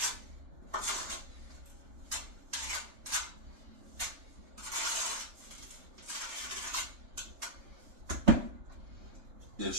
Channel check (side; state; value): left; late; 3.4 ms